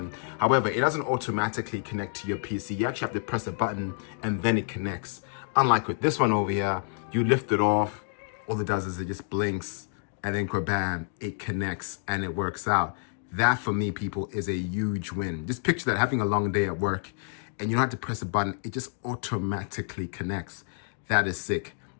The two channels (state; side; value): silent; right; 59 dB below the other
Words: However, it doesn't automatically connect to your PC. You actually have to press a button and then it connects. Unlike with this one over here, you lift it off, all it does is it just blinks and then bam, it connects and it works out. That for me, people, is a huge win. Just picture that, having a long day at work and you don't have to press a button, it just automatically connects. That is sick.